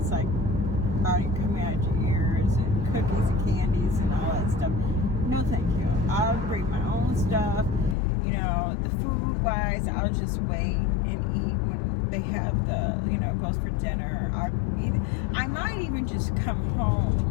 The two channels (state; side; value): drops out; right; at 8.0 s